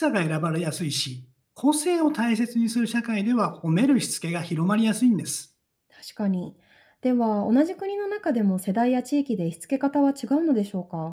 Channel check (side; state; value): both; identical; correlation 1.00